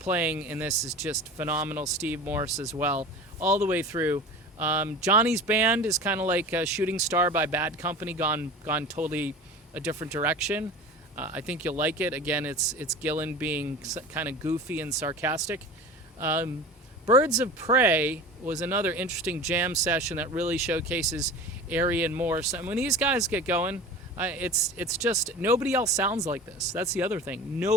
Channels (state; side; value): normal; both; correlation 0.35